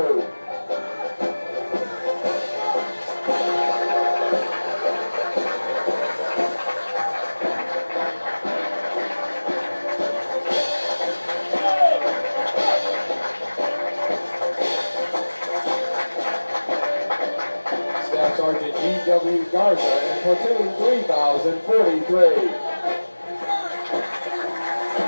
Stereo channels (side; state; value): both; inverted; correlation -1.00